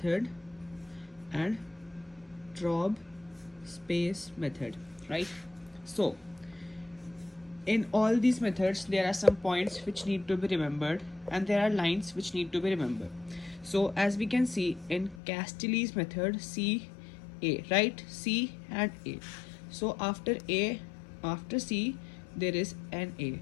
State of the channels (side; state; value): right; drops out; at 15.2 s